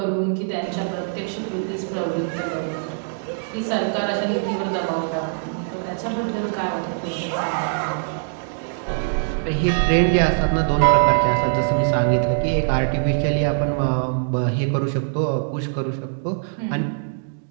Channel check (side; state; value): left; silent; digital silence